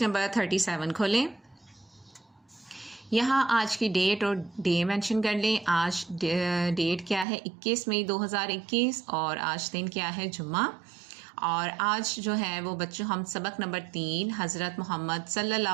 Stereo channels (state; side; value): drops out; left; at 7.2 s